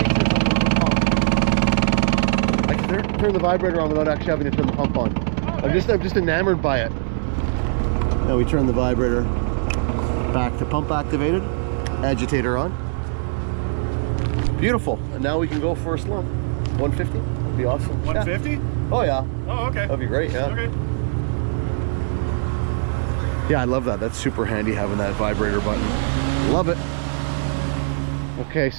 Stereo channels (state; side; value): silent; left; 65 dB below the other